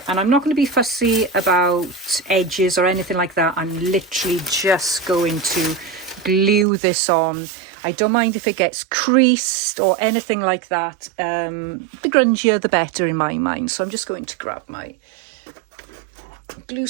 And I'm not going to be fussy about edges or anything like that. I'm literally just going to glue this on. I don't mind if it gets creased or anything like that. The grungier the better in my mind. So I'm just going to grab my glue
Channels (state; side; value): drops out; left; at 6.7 s